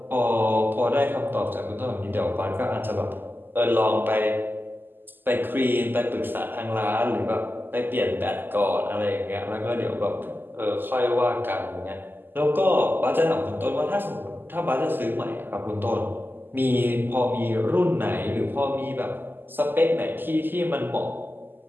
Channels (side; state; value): left; late; 0.094 ms